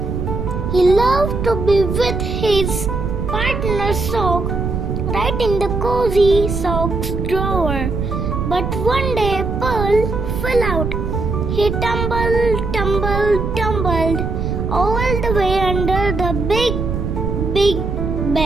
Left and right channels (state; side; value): noise; right; rumble, 3 dB below the sound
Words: He loved to be with his partner sock right in the cozy socks drawer. But one day Pearl fell out. He tumbled all the way under the big